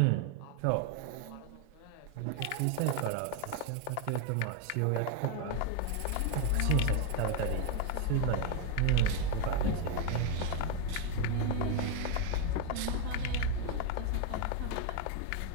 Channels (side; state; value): both; different; correlation 0.01